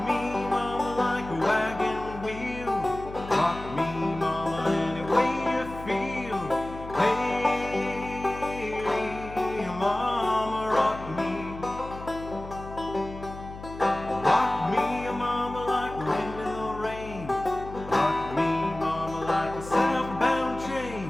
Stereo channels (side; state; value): left; noise; hum, 13 dB below the sound